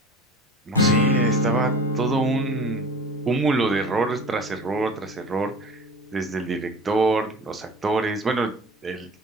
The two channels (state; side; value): normal; both; correlation 0.39